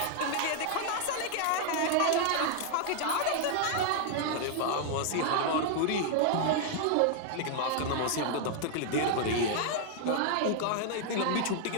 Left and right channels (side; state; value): both; different; correlation 0.00